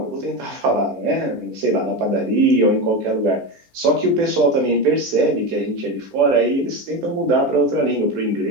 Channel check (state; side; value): late; left; 15 ms